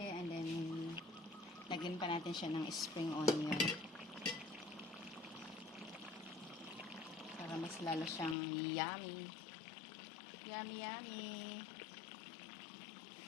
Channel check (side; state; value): right; drops out; at 8.3 s